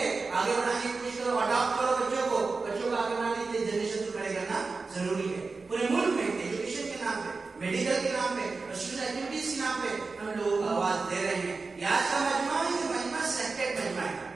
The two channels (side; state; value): left; quieter; 4.1 dB